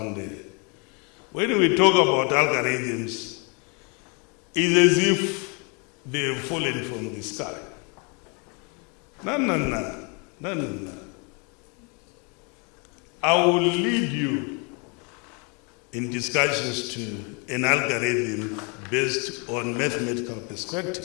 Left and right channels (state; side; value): quieter; right; 33.6 dB